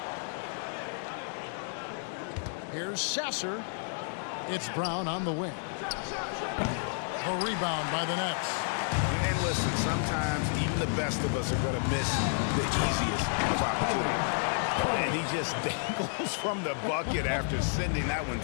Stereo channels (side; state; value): right; silent; 57 dB below the other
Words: Here's Sasser. It's Brown on the wing. A rebound by the Nets. And listen, sometimes even the best of us are going to miss the easiest of opportunities. And he just dangles from the bucket after sending that one